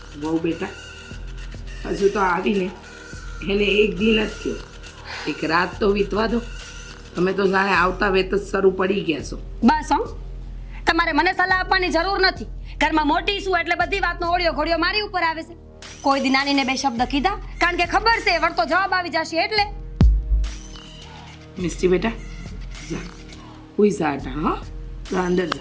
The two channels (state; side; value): identical; both; correlation 1.00